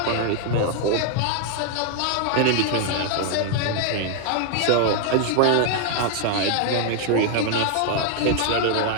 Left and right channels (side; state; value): both; different; correlation 0.00